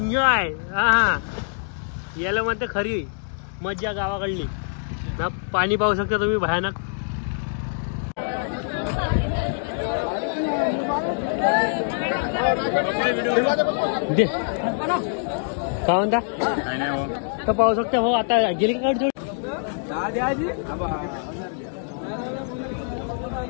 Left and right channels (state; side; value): silent; right; digital silence